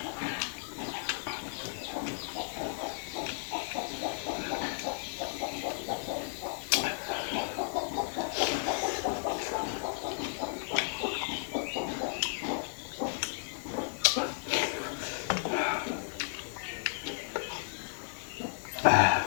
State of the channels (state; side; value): silent; right; digital silence